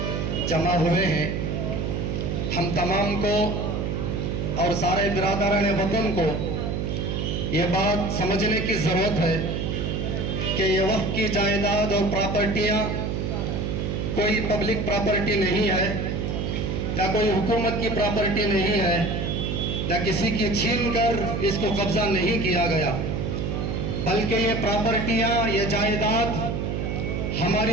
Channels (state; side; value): noise; right; hum, 1 dB below the sound